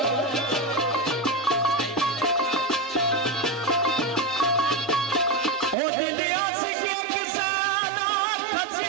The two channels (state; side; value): drops out; left; at 5.8 s